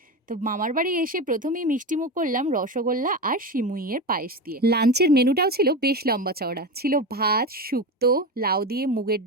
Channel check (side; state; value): both; normal; correlation 0.21